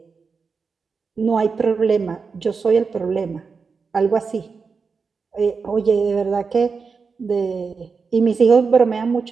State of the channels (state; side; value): quieter; left; 5.1 dB